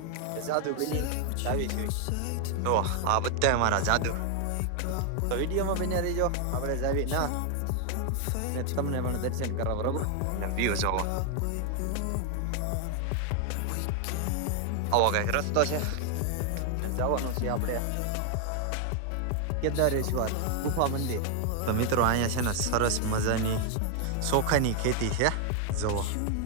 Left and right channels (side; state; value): both; different; correlation 0.00